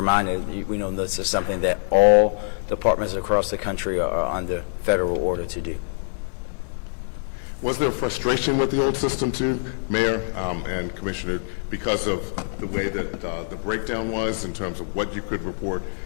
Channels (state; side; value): silent; right; digital silence